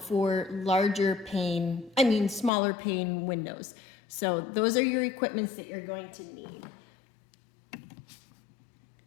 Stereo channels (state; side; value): drops out; right; at 2.5 s